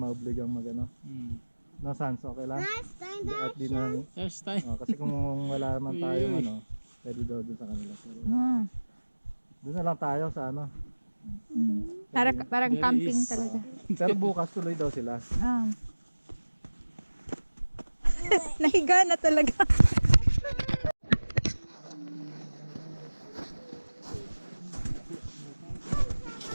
mag ano. No, Sans, okay lang? At di na, First time. kasi kung wala naman tayong Uy. ano, pwede daw doon sa kanila. Pero, Ah. doon na lang tayo sa ano. Parang There camping is- talaga. Pero bukas tuloy daw sila. Ah. Nahiga na talaga.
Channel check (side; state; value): both; inverted; correlation -1.00